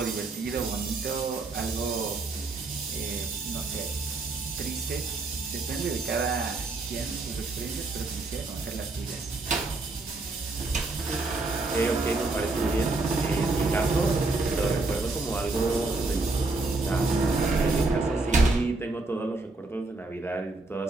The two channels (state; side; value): quieter; left; 3.4 dB